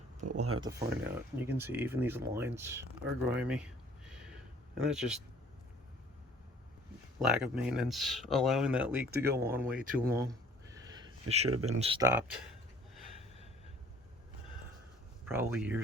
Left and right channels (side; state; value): both; normal; correlation 0.55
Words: but we'll have to find out. You can see even these lines are grimy, and that's just lack of maintenance, allowing that leak to go on way too long. It should have been stopped probably